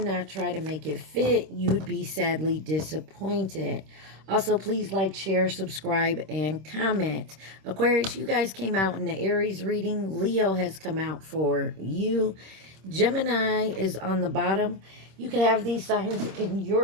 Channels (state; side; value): late; left; 26 ms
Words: try to make it fit. You'd be sadly disappointed. Also, please like, share, subscribe, and comment. Aquarius, you guys came out in the Aries reading. Leo has come out for you. Gemini is on the bottom. You could have these signs in